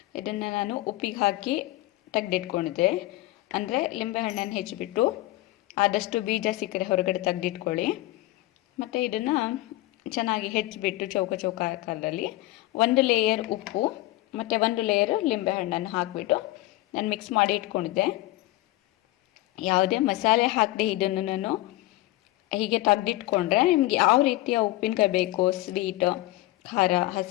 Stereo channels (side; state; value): right; quieter; 17.8 dB